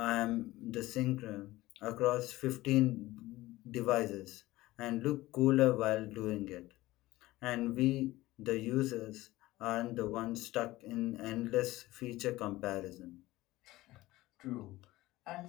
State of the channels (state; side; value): quieter; right; 17.9 dB